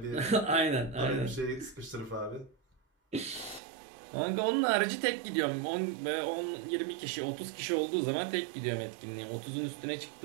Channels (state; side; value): drops out; left; at 3.6 s